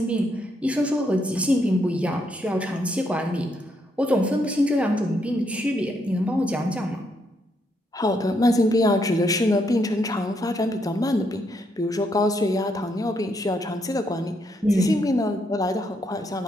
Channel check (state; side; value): normal; both; correlation 0.76